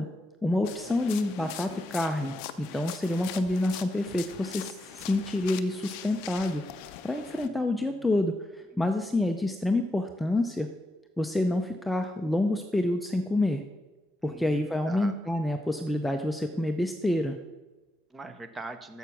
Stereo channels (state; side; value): normal; both; correlation 0.86